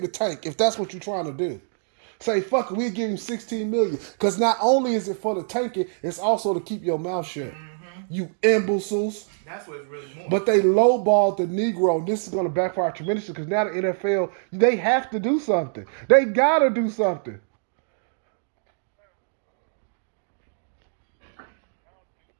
tank if that's what you're trying to do. Say, fuck it, we'll give him $16 million. Because not only is it for the tanking, it's also to keep your mouth shut. You imbeciles. That's what it's really more. But they lowballed the Negro. This is going to backfire tremendously because now the NFL, they have to do something. They got to do something.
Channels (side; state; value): left; silent; digital silence